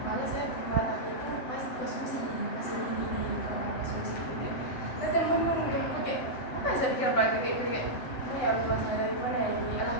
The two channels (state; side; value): late; right; 7.9 ms